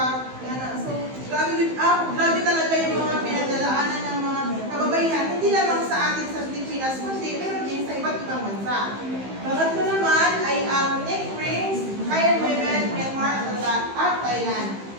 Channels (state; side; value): late; left; 15 ms